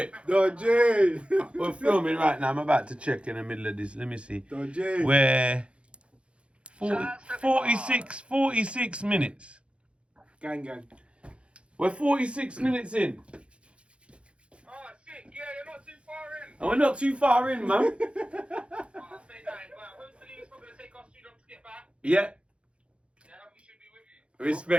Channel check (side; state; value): left; late; 0.059 ms